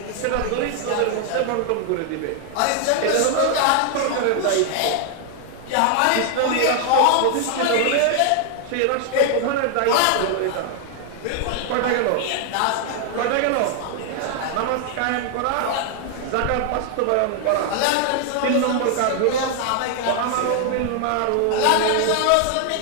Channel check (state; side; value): different; both; correlation 0.00